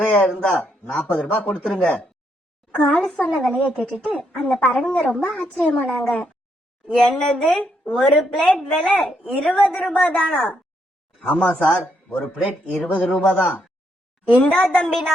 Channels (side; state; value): both; normal; correlation 0.76